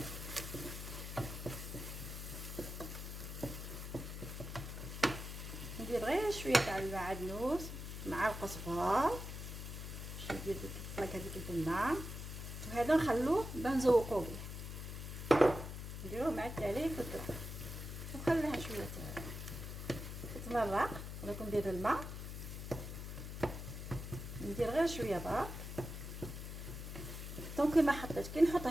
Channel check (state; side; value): noise; left; hum, 7 dB below the sound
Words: ندير غير شويه تاع المعدنوس مع القزبر باش ندير ديك الطلاق هذيك البنه. وهذا نخلوه باه نزوقوه به. نديروه مع التالي في الطلاق ونخليها شويه تتمرق. ولكن ندير الماء ندير غير شويه برك. دونك ما حطيت كي نحط